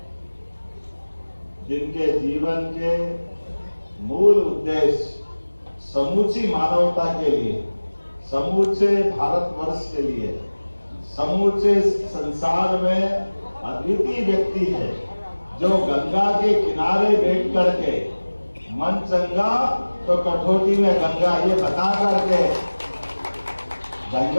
जिनके जीवन के मूल उद्देश्य समूची मानवता के लिए, समूचे भारतवर्ष के लिए, समूचे संसार में अद्वितीय व्यक्ति है, जो गंगा के किनारे बैठ करके मन चंगा तो कठौती में गंगा ये बता करके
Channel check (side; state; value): both; inverted; correlation -1.00